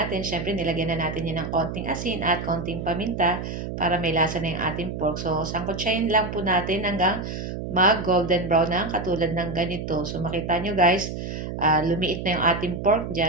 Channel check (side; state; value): right; noise; hum, 6 dB below the sound